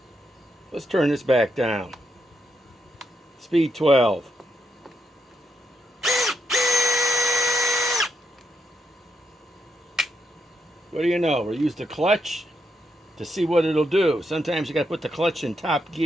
Let's turn this back down. Speed 12. What do you know? We'll use the clutch to see what it'll do. Sometimes you got to put the clutch in top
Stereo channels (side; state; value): both; normal; correlation 0.81